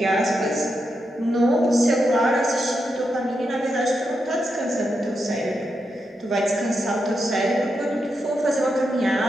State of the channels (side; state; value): both; normal; correlation 0.85